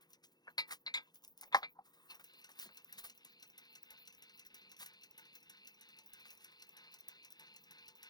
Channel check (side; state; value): right; late; 0.19 ms